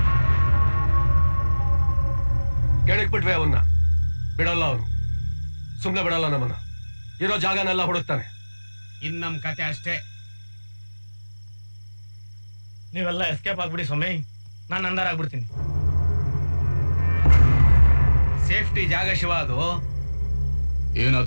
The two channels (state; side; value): inverted; both; correlation -1.00